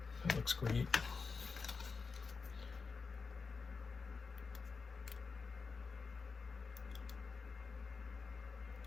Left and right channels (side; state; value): right; quieter; 4.8 dB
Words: That looks great.